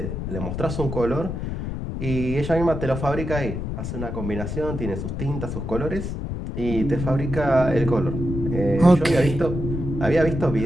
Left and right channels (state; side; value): noise; left; rumble, 5 dB below the sound